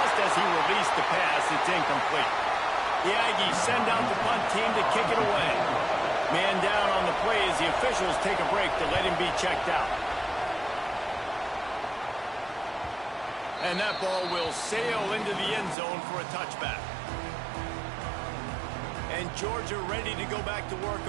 as he released the pass. It's incomplete. The Aggies send out the punt team to kick it away. Man down on the play as the officials take a break to let him be checked out. And that ball will sail into the end zone for a touchback. And Georgia ready to go back to work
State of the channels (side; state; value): left; drops out; at 15.8 s